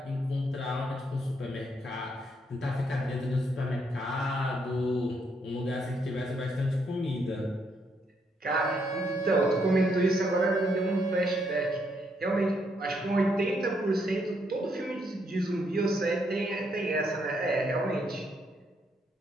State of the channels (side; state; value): both; normal; correlation 0.75